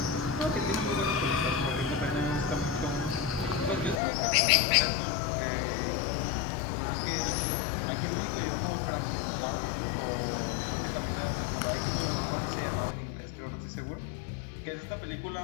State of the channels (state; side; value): drops out; right; at 4.0 s